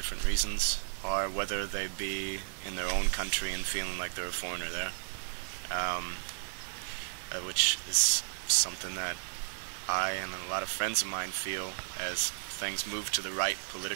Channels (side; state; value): left; silent; 55 dB below the other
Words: reasons, or whether they be in their own country and feeling like they're a foreigner there, which is something that I and a lot of friends of mine feel as things move to the right